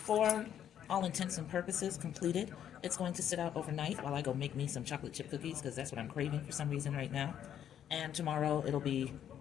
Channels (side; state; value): right; quieter; 9.9 dB